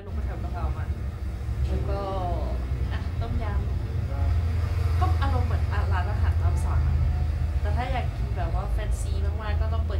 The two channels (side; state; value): both; identical; correlation 1.00